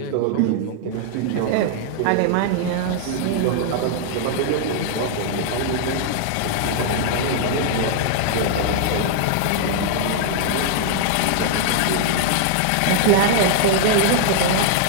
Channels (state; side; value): different; both; correlation 0.00